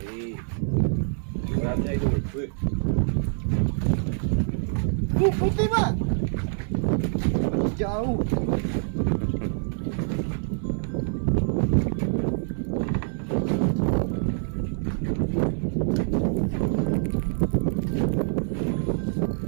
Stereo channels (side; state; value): left; silent; 61 dB below the other